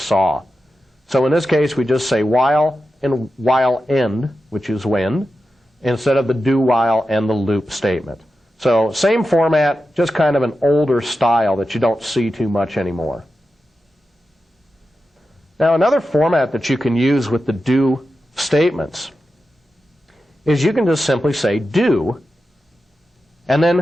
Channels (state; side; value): normal; both; correlation 0.91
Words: saw. So in this case, we just say while and while end, which is when, instead of the do while and the loop statement. So same format, just kind of an older style that you don't see too much anymore. Now another format that you can use with the do statements is you can just simply say do, and